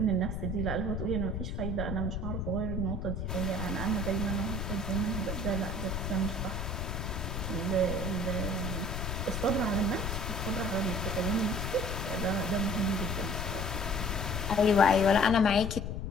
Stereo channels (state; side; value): noise; left; rumble, 3 dB below the sound